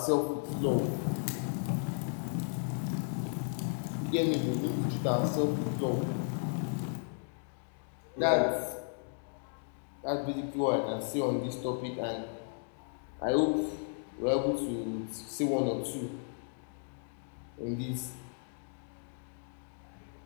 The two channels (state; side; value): silent; right; 55 dB below the other